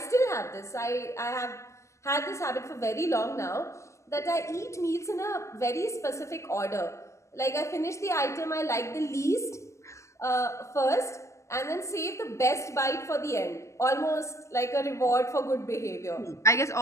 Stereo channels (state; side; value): late; right; 0.14 ms